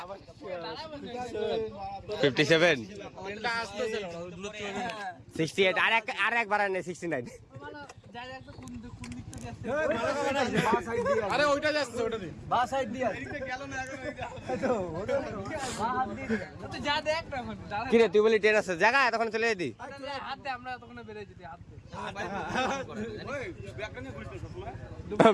57 68 আর একবার আনে 69। আরে ওইটা যাচ্ছে ওটা দিন বা সাইড দিয়ে গেল না এখন যা দেখ না এখন কি রে তুই বলি ট্রেন আছে জায়গা তখন চলে যেতি হাত দে, আমরা তখন বেরে যেতে হাত দে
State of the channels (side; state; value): both; identical; correlation 1.00